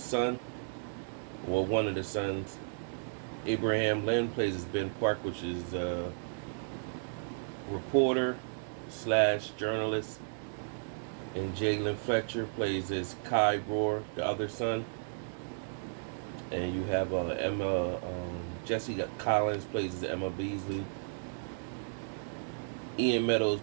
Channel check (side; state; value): left; silent; digital silence